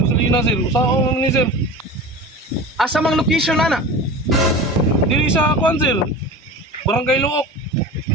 sir. Usao naman ni, sir. Asa mang location ana? Dili sa kuan, sir. Barangay Luok.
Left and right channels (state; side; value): normal; both; correlation 0.33